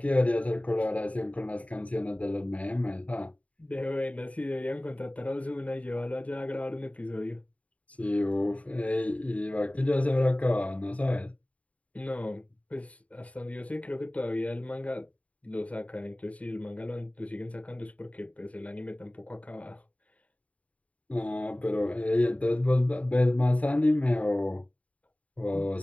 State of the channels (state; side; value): late; right; 0.067 ms